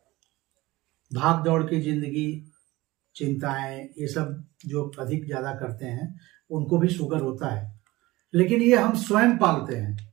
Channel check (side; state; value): left; quieter; 19.6 dB